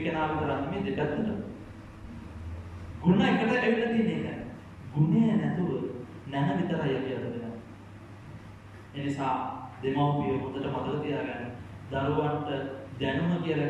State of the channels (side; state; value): both; identical; correlation 1.00